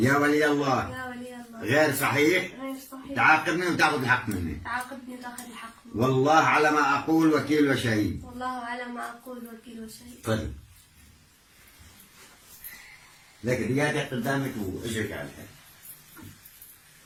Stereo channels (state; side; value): identical; both; correlation 1.00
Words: ولي الله غير صحيح تعاقبني وتاخذ الحق مني والله على ما أقول وكيل وشهيد تفضل لك ريادك قدامك واجرك على الحيط